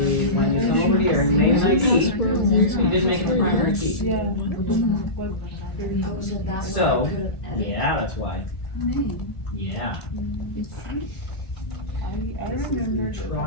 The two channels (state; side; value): late; right; 1.7 ms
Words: when you come over here, you made an ID. You didn't make it the primary key. So, yeah, that's why. Yeah. I remember.